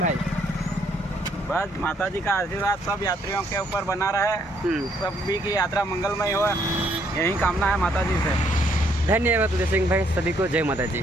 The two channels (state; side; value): normal; both; correlation 0.69